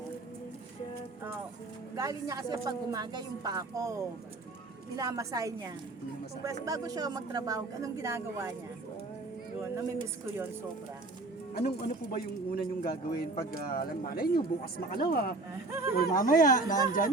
Galing niya kasi pag umaga yung pa ako. Minamasay niya. Bago siya magtrabaho, anong ginagawa niya? Yun, namimiss ko yun sobra. Ano po ba yung una niyong gagawin pag malay niyo bukas makalawa or mamaya nandyan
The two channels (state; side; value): quieter; left; 3.2 dB